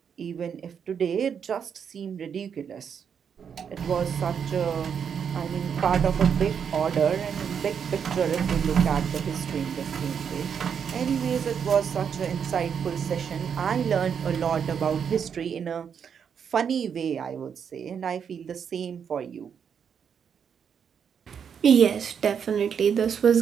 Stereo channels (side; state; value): left; quieter; 7.3 dB